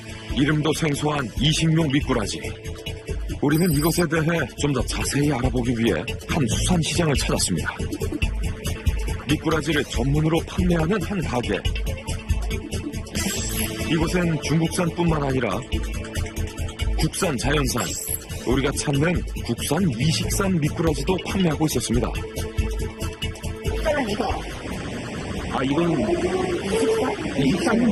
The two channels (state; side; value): identical; both; correlation 1.00